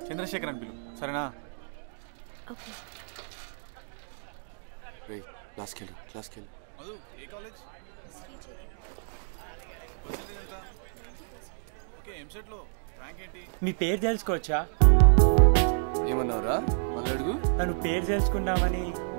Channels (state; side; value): silent; left; digital silence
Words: చంద్రశేఖర్ అని పిలు సరేనా? ఓకే. క్లాస్కి వెళ్ళు. మధు ఏ కాలేజ్? ఓకే ఎంసెట్లో ర్యాంక్ ఏంటి? మీ పేరు తెలుసుకోవచ్చా? ఏమన్నావురా? మళ్ళీ అడుగు. నన్ను పేరు తెలుసుకుందామని.